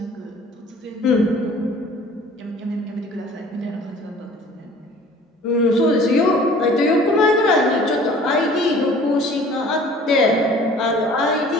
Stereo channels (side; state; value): both; normal; correlation 0.49